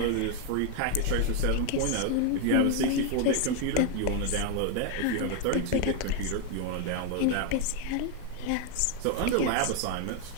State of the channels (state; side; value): different; both; correlation 0.01